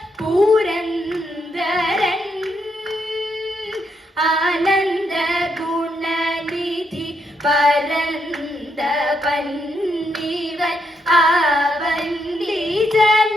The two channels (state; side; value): normal; both; correlation 0.78